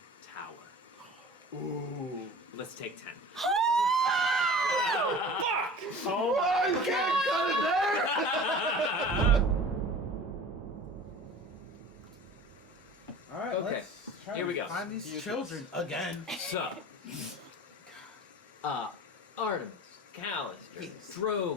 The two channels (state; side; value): normal; both; correlation 0.41